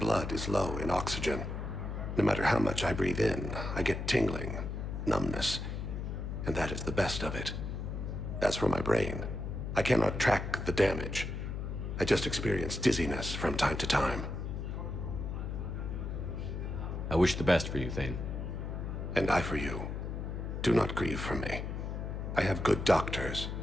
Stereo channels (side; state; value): left; noise; hum, 4 dB below the sound